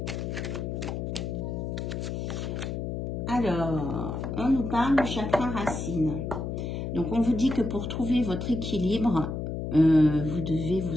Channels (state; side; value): noise; left; hum, 4 dB below the sound